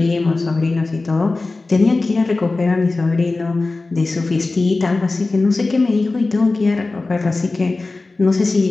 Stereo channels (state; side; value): quieter; right; 3.4 dB